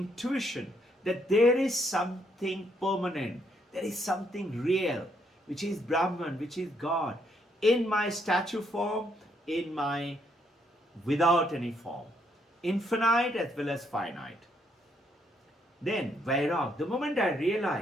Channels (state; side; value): normal; both; correlation 0.73